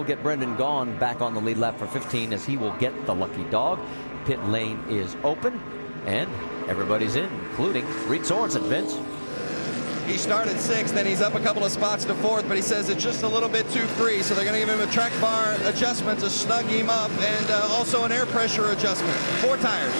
get Brendan Gaughan back on the lead lap for 15 as he will get the lucky dog. Pit lane is open and everybody's in, including Reed Sorensen. Vince? He started 6th, then he's up a couple of spots to 4th, but he says it's just a little bit too free, so they're going to give him a track bar adjustment to snug him up, and also an air pressure adjustment. 4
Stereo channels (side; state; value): both; inverted; correlation -1.00